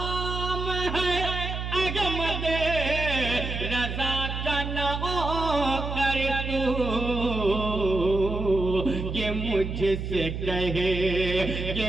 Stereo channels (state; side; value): noise; right; hum, 5 dB below the sound